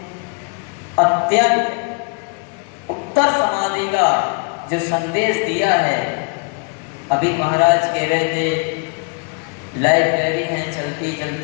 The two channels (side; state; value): right; quieter; 37.5 dB